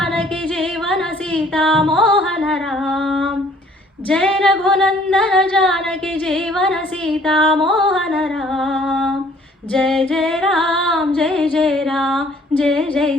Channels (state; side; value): normal; both; correlation 0.58